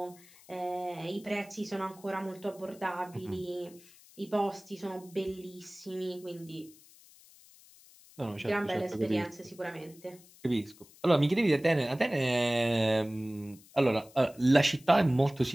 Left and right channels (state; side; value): noise; left; hiss, 24 dB below the sound